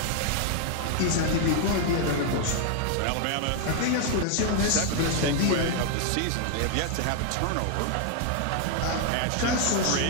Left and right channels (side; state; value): both; different; correlation 0.00